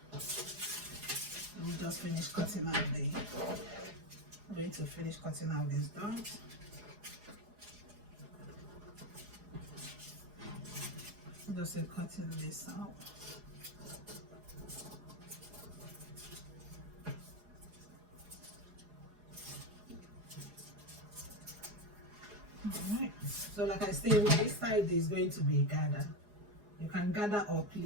let me just finish cutting out I'm going to finish cutting out these dots. Just cutting this out. All right, so like I said, this side is going to be gather. You can gather or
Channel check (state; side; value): late; left; 4.8 ms